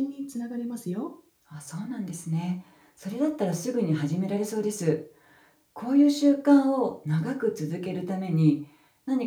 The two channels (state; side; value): identical; both; correlation 1.00